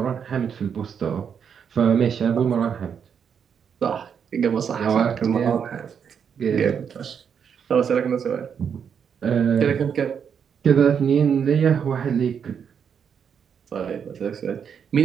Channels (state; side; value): quieter; left; 7.4 dB